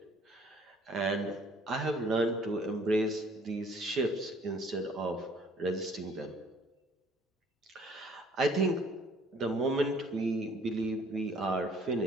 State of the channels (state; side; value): normal; both; correlation 0.57